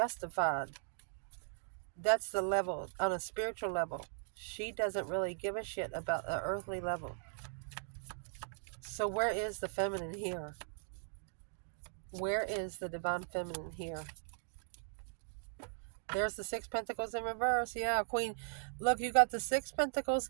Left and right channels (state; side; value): silent; left; digital silence